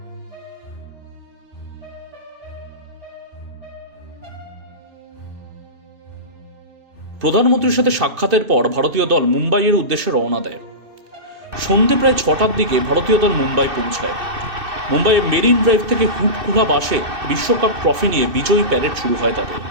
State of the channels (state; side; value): late; left; 2.6 ms